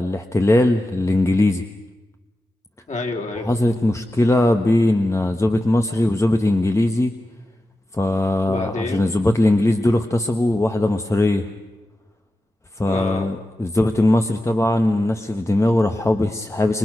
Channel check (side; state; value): both; normal; correlation 0.92